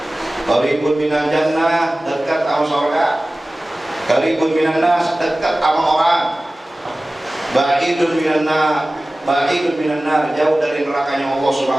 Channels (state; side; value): normal; both; correlation 0.97